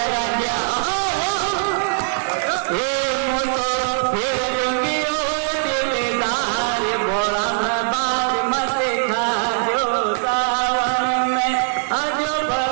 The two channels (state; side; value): silent; left; digital silence